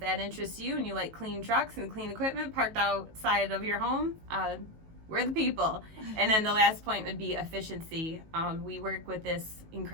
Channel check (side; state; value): left; late; 19 ms